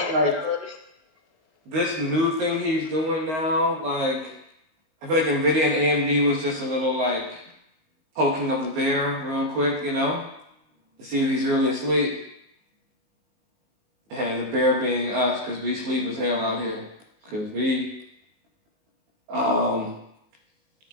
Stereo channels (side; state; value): left; late; 19 ms